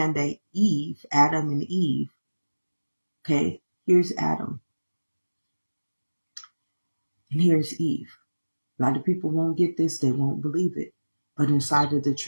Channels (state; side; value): inverted; both; correlation -1.00